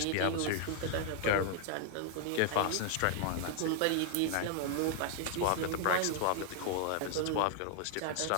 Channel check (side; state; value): both; different; correlation 0.00